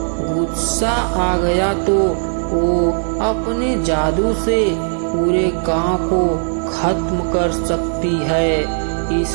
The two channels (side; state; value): left; silent; digital silence